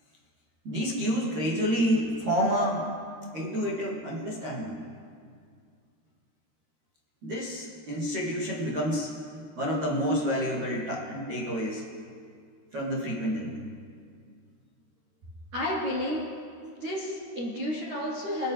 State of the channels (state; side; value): late; left; 13 ms